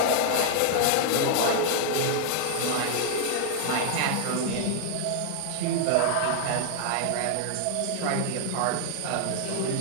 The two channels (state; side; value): different; both; correlation 0.00